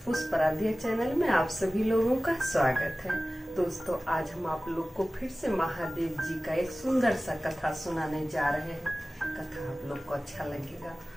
पुष्पराध्या चैनल में आप सभी लोगों का स्वागत है। दोस्तों, आज हम आप लोग को फिर से महादेव जी का एक सुंदर सा कथा सुनाने जा रहे हैं। कथा आप लोग को अच्छा लगेगा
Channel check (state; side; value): normal; both; correlation 0.97